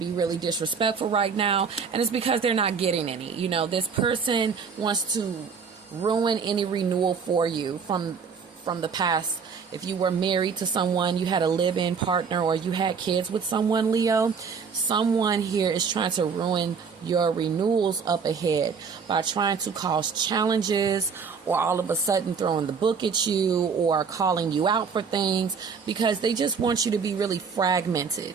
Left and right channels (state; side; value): quieter; left; 5.9 dB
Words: really disrespectful right now, and it's because they're not getting any. This person wants to ruin any renewal for you from the past. If you were married to someone, you had a live-in partner, or you had kids with someone, Leo, someone here is trying to ruin your renewals up ahead by trying to cause challenges, or all of a sudden throwing the book at you, or calling you out for things, because they just want you to be really